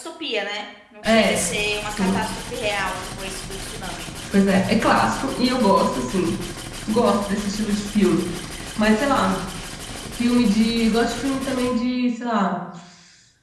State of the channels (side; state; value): both; identical; correlation 1.00